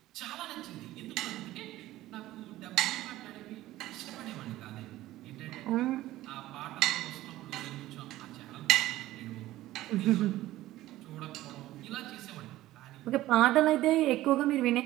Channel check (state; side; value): quieter; left; 15.7 dB